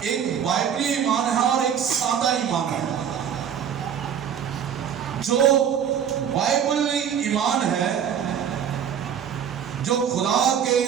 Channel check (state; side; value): quieter; left; 8.5 dB